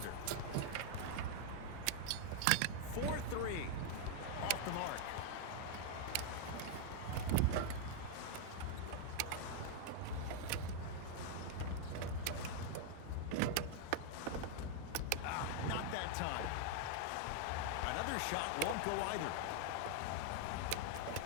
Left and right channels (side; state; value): both; different; correlation 0.00